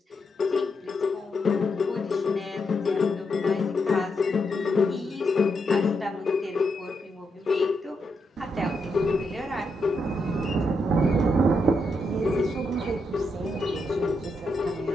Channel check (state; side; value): normal; both; correlation 0.82